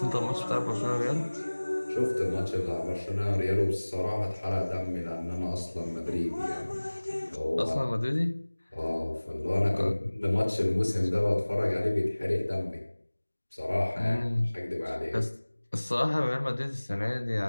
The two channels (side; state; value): both; inverted; correlation -1.00